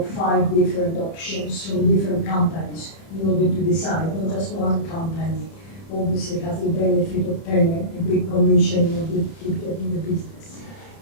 5 different options from different companies in order to decide. Not just one company obviously has the benefit of paying a big commission in order to keep getting the business.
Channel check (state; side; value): late; right; 30 ms